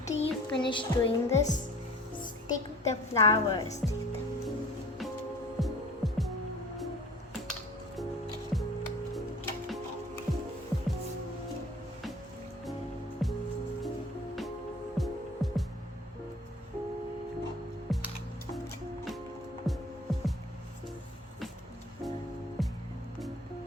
you finish doing this, stick the flowers.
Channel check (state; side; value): normal; both; correlation 0.46